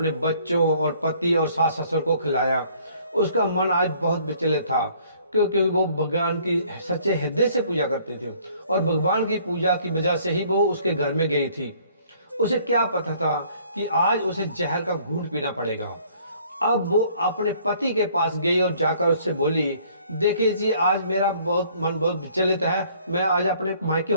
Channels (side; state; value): both; inverted; correlation -0.59